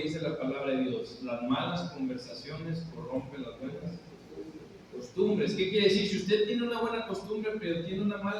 dice la palabra de Dios: las malas conversaciones corrompen las buenas costumbres. ¿Qué quiere decir? Si usted tiene una buena costumbre pero tiene una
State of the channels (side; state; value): both; identical; correlation 1.00